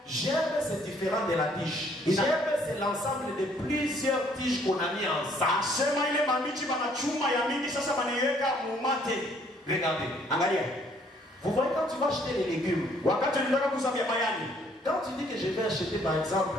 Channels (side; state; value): both; normal; correlation 0.63